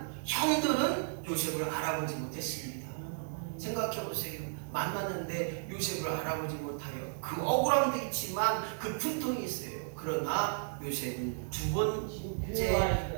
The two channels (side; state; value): left; silent; digital silence